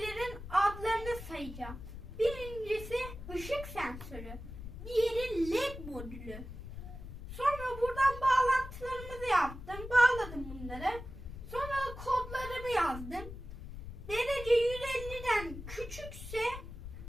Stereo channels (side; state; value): left; noise; rumble, 11 dB below the sound